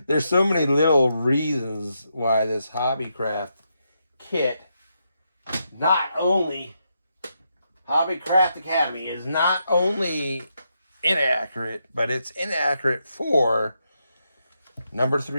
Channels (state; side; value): inverted; both; correlation -0.82